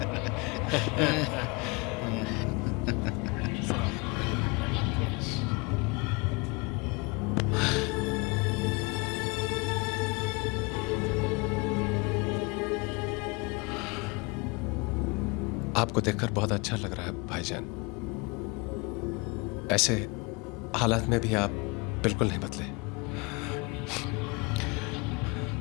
आपको देखकर बहुत अच्छा लग रहा है भाईजान। ऐसे हालात में भी आप बिल्कुल नहीं बदले।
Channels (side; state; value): right; quieter; 28.0 dB